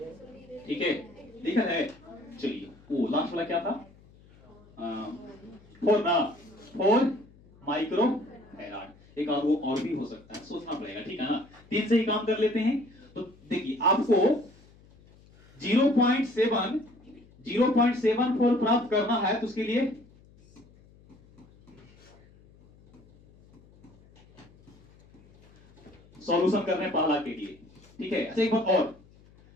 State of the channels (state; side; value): noise; left; hum, 26 dB below the sound